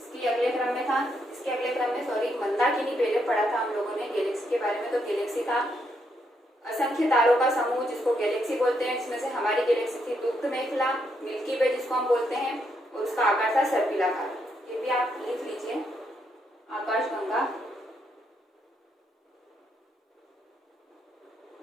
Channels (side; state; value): both; normal; correlation 0.77